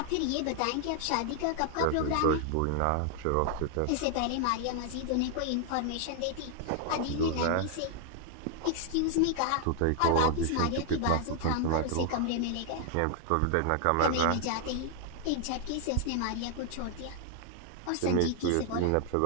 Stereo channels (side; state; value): both; different; correlation 0.00